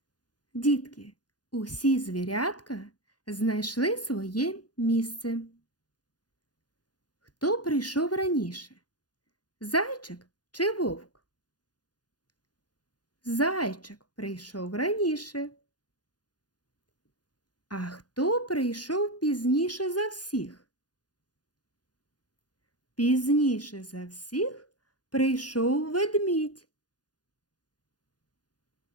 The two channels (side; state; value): right; late; 0.69 ms